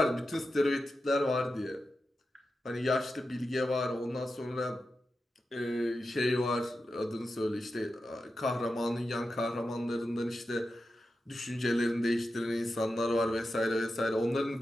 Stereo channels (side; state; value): both; normal; correlation 0.90